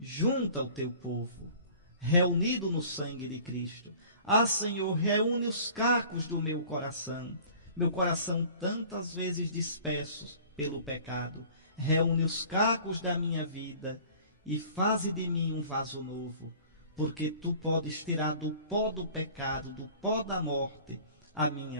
junta o teu povo, reunido no sangue de Cristo. Ah, Senhor, reúne os cacos do meu coração tantas vezes dispersos pelo pecado. Reúne os cacos da minha vida e faze de mim um vaso novo, porque tu podes tirar do pó do pecado, do pó da morte, a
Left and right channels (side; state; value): both; inverted; correlation -0.48